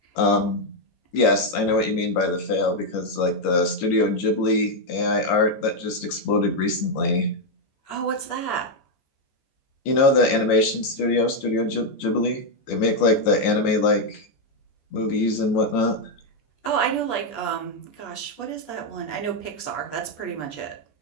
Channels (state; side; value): late; right; 15 ms